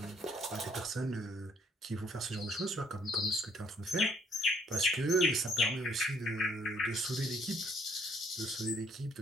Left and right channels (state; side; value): normal; both; correlation 0.65